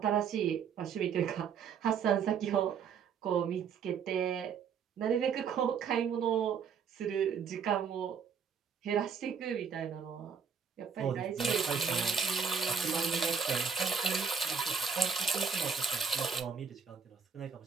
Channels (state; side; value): quieter; left; 6.5 dB